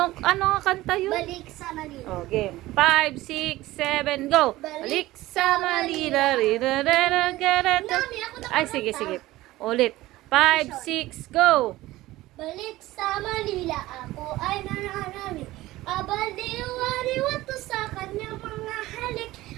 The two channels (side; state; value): left; quieter; 17.4 dB